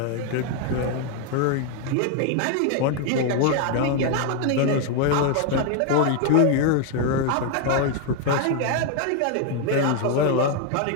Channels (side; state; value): both; different; correlation 0.01